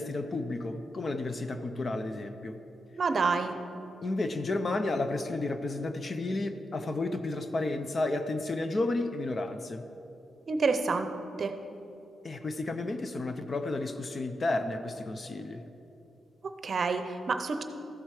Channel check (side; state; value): both; normal; correlation 0.86